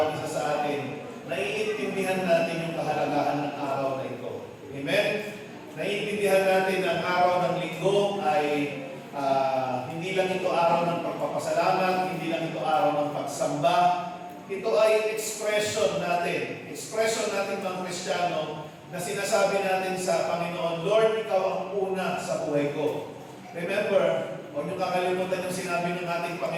isa sa atin, naiintindihan natin yung kahalagahan ng araw na ito. Amen? Naiintindihan natin na ang araw ng linggo ay hindi lang ito araw ng pagpapasalamat, hindi lang ito araw ng pagsamba. Ito ay expression natin mga Kristiyano, na sinasabi natin sa Panginoon, Lord, Ikaw ang una sa buhay ko. Remember, huwag niyo kakalimutan yung sinabi ng ating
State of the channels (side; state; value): both; identical; correlation 1.00